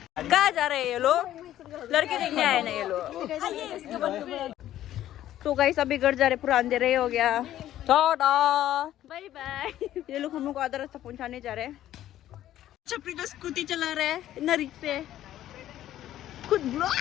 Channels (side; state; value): right; quieter; 12.7 dB